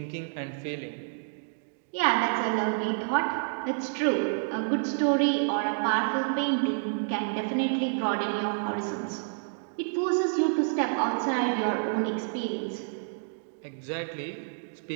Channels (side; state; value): left; silent; digital silence